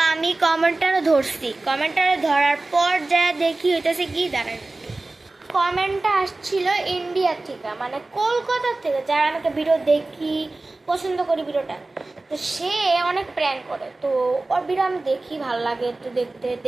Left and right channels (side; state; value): left; quieter; 3.1 dB